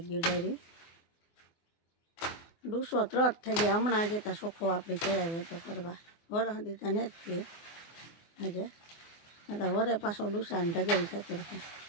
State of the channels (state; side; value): late; right; 24 ms